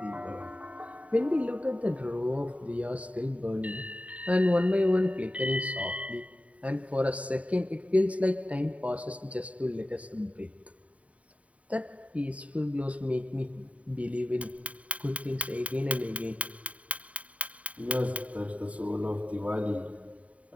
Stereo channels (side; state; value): left; late; 0.067 ms